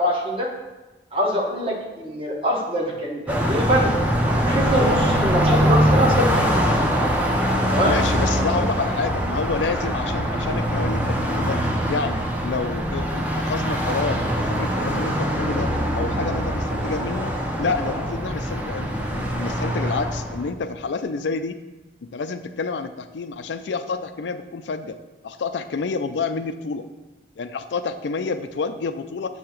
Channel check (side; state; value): both; normal; correlation 0.44